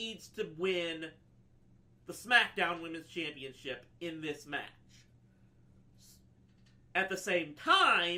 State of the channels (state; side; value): identical; both; correlation 1.00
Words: to win the SmackDown Women's Championship in this match. At the same